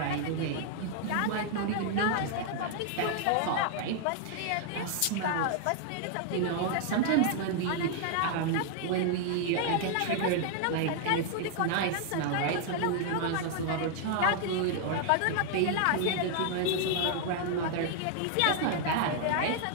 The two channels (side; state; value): both; different; correlation 0.00